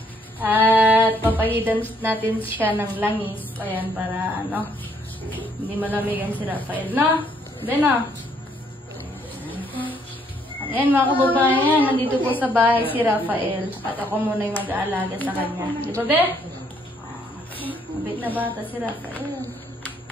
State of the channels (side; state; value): both; normal; correlation 0.68